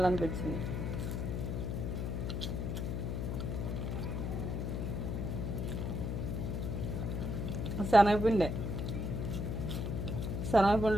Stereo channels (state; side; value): noise; left; hum, 1 dB below the sound